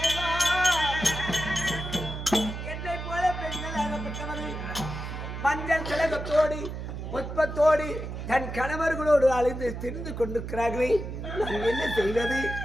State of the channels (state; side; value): noise; right; hum, 7 dB below the sound